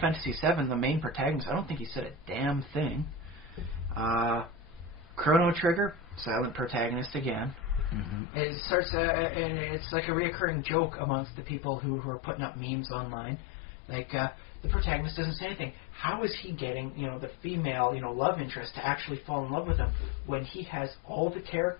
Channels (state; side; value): drops out; right; at 8.2 s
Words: VII, the main protagonist, I don't think he said a damn thing. Chrono Trigger, silent protagonist again. Mm-hmm. It starts. It's like a reoccurring joke amongst the people who are putting up memes online. The protagonist doesn't say anything. How is he getting, the female, love interest to actually fall in love with him when he has all the